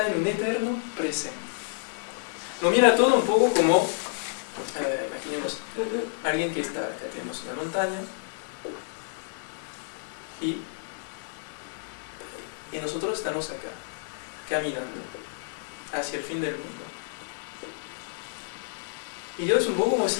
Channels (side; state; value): right; silent; digital silence